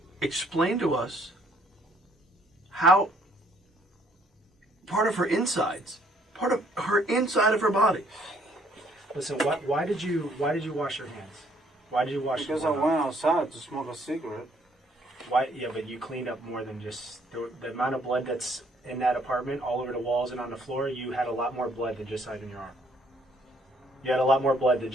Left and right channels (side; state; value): both; normal; correlation 0.64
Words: explain to us how part of her insides, part of her inside of her body. Listen, why did you wash your hands? Why did you wash Because I your hands? went outside to smoke a cigarette. Why? Yeah, but you cleaned up more than just the amount of blood that's in that apartment, all over the walls and on the floor. You had a lot more blood than just on your arm. You had a lot more blood than